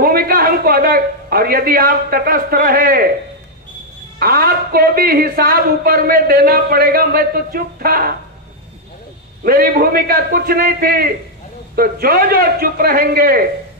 हमको अदा, और यदि आप तटस्थ रहे, आपको भी हिसाब ऊपर में देना पड़ेगा। मैं तो चुप था, मेरी भूमिका कुछ नहीं थी। तो जो जो चुप रहेंगे,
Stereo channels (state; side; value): normal; both; correlation -0.02